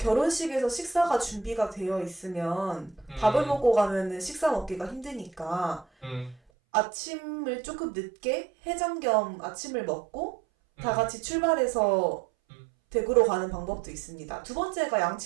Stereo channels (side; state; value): left; drops out; at 6.4 s